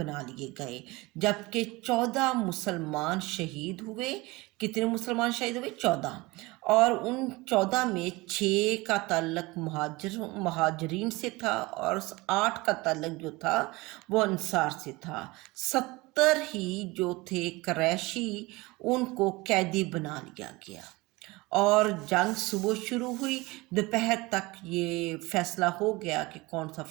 لیے گئے، جبکہ 14 مسلمان شہید ہوئے۔ کتنے مسلمان شہید ہوئے؟ 14، اور ان 14 میں 6 کا تعلق مہاجرین سے تھا، اور 8 کا تعلق جو تھا وہ انصار سے تھا۔ 70 ہی جو تھے قریشی، ان کو قیدی بنا لیا گیا، اور جنگ صبح شروع ہوئی، دوپہر تک یہ فیصلہ ہو گیا کہ کون سا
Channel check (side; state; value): left; quieter; 22.6 dB